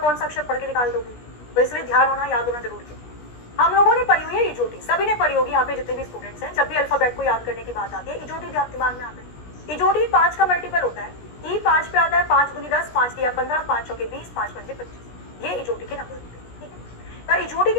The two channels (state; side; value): late; right; 17 ms